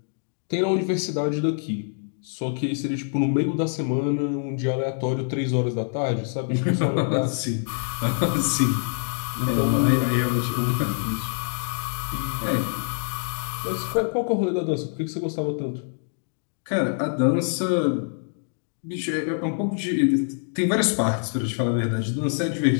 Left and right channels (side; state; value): right; silent; digital silence